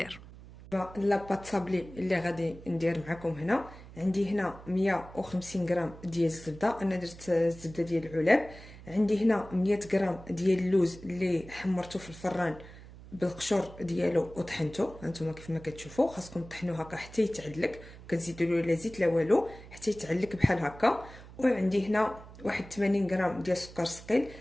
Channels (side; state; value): right; noise; hum, 17 dB below the sound